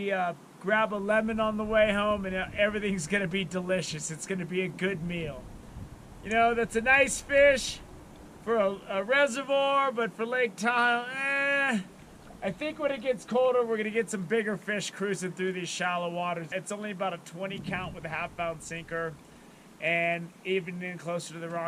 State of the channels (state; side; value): identical; both; correlation 1.00